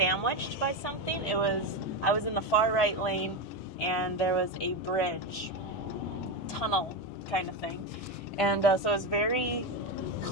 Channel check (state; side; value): normal; both; correlation 0.13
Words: by something. I was in the far right lane and there was a bridge, tunnel kind of thing, and so it was very